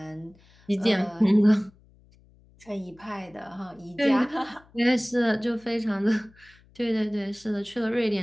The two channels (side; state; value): left; noise; hum, 28 dB below the sound